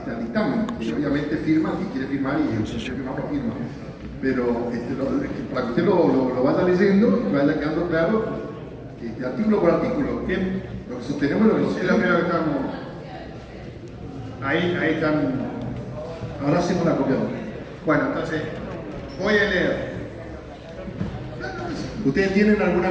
dictamen, y obviamente firma, si quiere firmar, y el que firma lo firma, pero para que usted lo vaya leyendo y vaya quedando claro, artículo por artículo, ¿bien? Lo que sostenemos y lo que no Es sostenemos. lo primero que estamos. Ahí están. Ahora hacemos la copia. Bueno, entonces, voy a leer. ¿Ustedes tienen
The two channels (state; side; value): identical; both; correlation 1.00